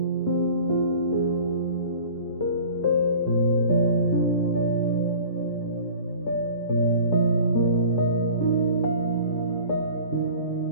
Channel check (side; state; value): both; inverted; correlation -0.44